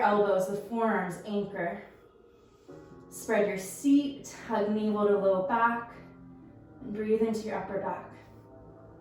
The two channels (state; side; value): identical; both; correlation 1.00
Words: with forearms anchor. Spread your seat, hug navel to low back, and breathe into your upper back.